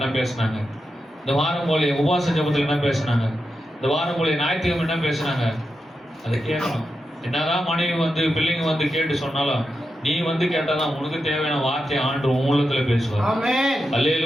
பேசினாங்க, இந்த வாரம் போல உபவாச ஜெபத்தில் என்ன பேசினாங்க, இந்த வாரம் போல ஞாயிற்றுக்கிழமை என்ன பேசினாங்க, அதை கேட்கணும். என்னதான் மனைவி பிள்ளைங்க கேட்டு சொன்னாலும், நீ கேட்டாதான் உனக்கு தேவையான வார்த்தையை ஆண்டு உன் உள்ளத்துல பேசுவார்.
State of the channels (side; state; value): both; normal; correlation 0.88